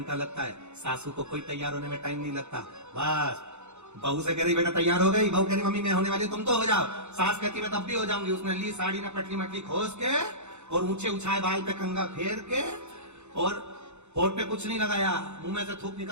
लगता है, सासू को कोई तैयार होने में टाइम नहीं लगता। बस बहू से कह रही बेटा तैयार हो गई, बहू कह रही मम्मी मैं होने वाली, तुम तो हो जाओ। सास कहती मैं तब भी हो जाऊंगी। उसने ली साड़ी में पटली मटली खोस के और ऊंचे उछाए बाल पे कंगा फेर के और होठ पे कुछ नहीं लगाया, मुंह में से थूक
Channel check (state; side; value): late; left; 0.82 ms